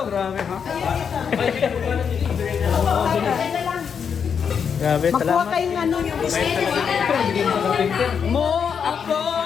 grabe ha. Grabe, Makuha salamat. kayong ano yung Mo ako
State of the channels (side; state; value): right; quieter; 6.9 dB